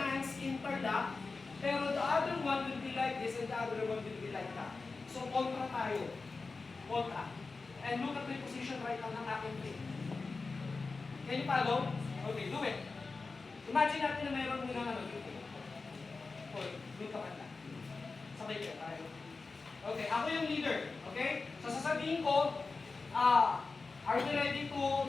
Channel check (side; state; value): right; quieter; 4.0 dB